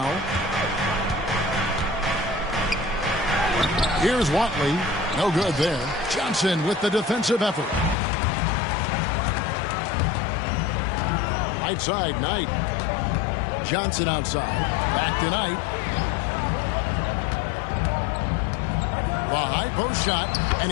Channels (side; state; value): right; drops out; at 8.0 s